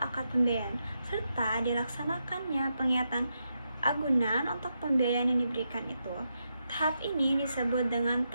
pembiayaan serta dilaksanakannya pengiyatan agunan untuk pembiayaan yang diberikan itu. Tahap ini disebut dengan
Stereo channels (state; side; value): inverted; both; correlation -0.84